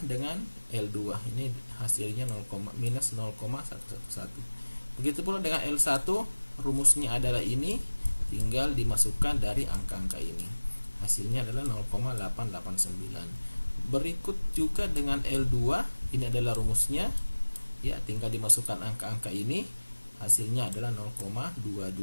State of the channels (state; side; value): inverted; both; correlation -1.00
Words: dengan L2. Ini hasilnya minus 0,111. Begitu pula dengan L1, rumusnya adalah ini, tinggal dimasukkan dari angka-angka ini. Hasilnya adalah 0,889. Berikut juga dengan L2, ini adalah rumusnya. Ya, tinggal dimasukkan angka-angka ini. Hasilnya adalah